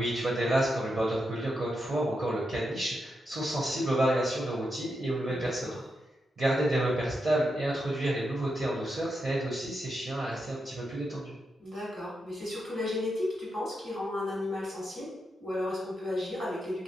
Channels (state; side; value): normal; both; correlation 0.85